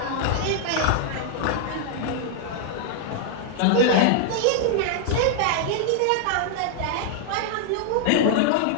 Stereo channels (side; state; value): both; different; correlation 0.00